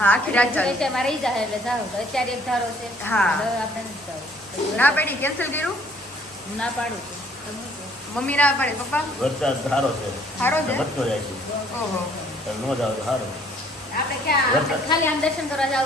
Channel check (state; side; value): normal; both; correlation 0.61